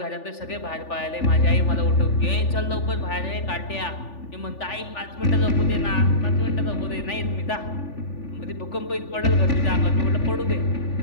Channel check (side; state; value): right; late; 3.4 ms